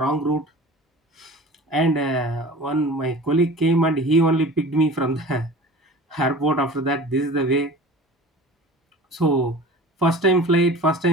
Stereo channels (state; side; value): normal; both; correlation 0.40